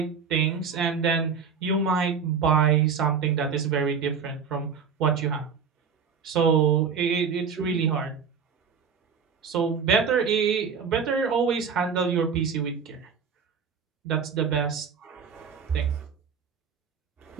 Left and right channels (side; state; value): left; quieter; 6.2 dB